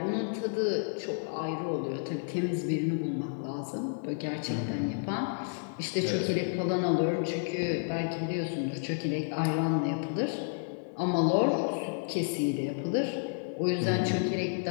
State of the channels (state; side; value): silent; right; digital silence